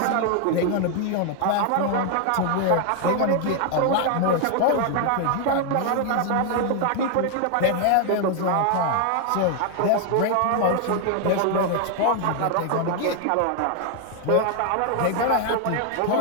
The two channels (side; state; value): both; different; correlation 0.00